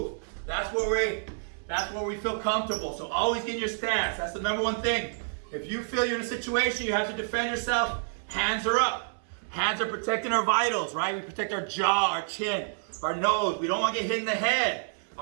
That's where we feel comfortable. So always get in your stance. That's the number one thing. If you feel you're in a situation, you have to defend yourself, hands are up. Hands are protecting our vitals, right? We protect our jaw, our chin, our nose. We don't want to get hit in the head.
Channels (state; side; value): silent; left; 59 dB below the other